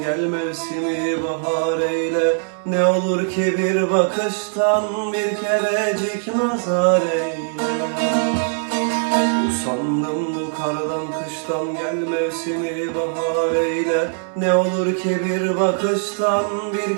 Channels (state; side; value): silent; left; digital silence